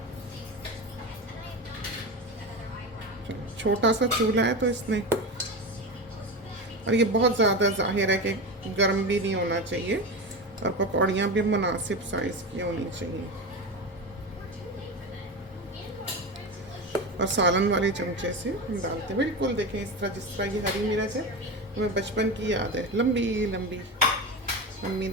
छोटा सा चूल्हा है तो इसने, और ये बहुत ज़्यादा जाहिर है कि गर्म भी नहीं होना चाहिए, और पकौड़ियाँ भी मुनासिब साइज़ की होनी चाहिए। और सालन वाले चमचे से हम डालते हैं बिल्कुल, देखें इस तरह, जिस तरह ये हरी मिर्च है हमें बचपन की याद है, लंबी लंबी मम्मी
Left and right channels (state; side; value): normal; both; correlation 0.22